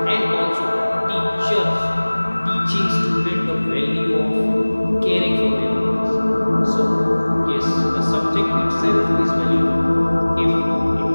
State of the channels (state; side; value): inverted; both; correlation -1.00